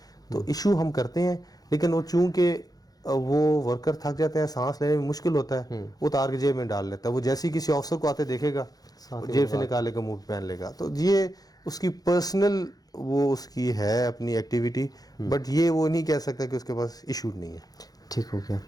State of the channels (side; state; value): right; late; 0.18 ms